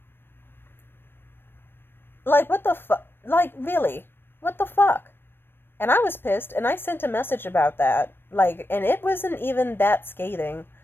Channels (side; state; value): right; late; 0.10 ms